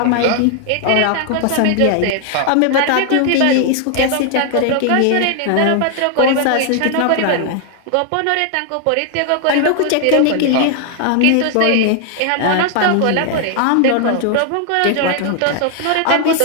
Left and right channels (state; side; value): different; both; correlation 0.00